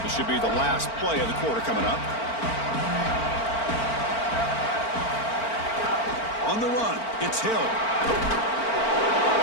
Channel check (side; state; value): right; late; 4.4 ms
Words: This should be the last play of the quarter coming up. On the run, it's Hill.